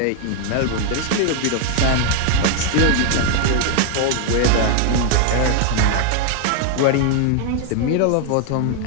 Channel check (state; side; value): different; both; correlation 0.00